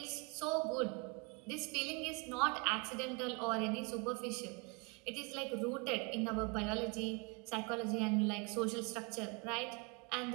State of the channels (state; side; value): quieter; left; 30.6 dB